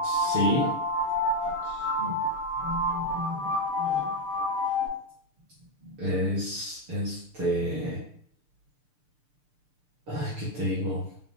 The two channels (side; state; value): left; late; 6.7 ms